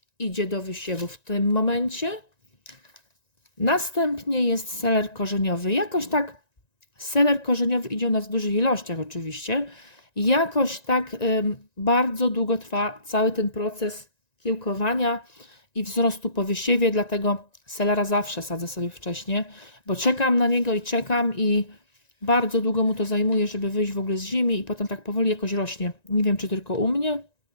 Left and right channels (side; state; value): right; late; 1.9 ms